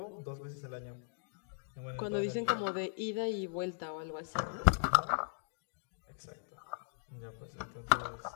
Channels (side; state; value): right; silent; digital silence